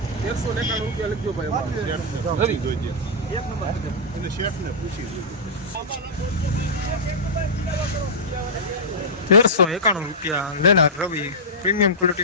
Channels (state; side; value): normal; both; correlation -0.11